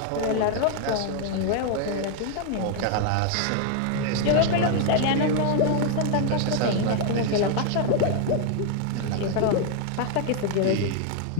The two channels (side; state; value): both; different; correlation 0.00